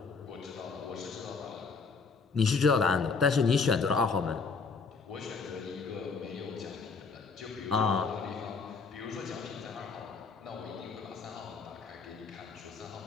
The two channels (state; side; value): quieter; right; 4.7 dB